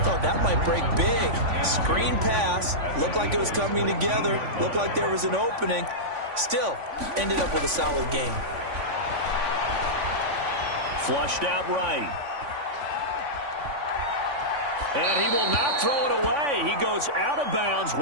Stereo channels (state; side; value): late; left; 3.5 ms